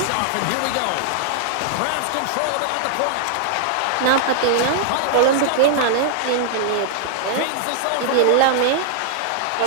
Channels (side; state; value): both; different; correlation -0.01